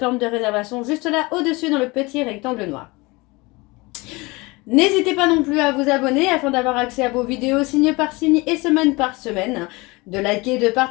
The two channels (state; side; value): quieter; right; 24.2 dB